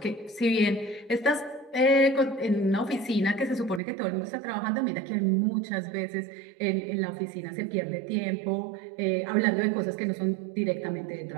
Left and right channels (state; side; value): drops out; left; at 3.8 s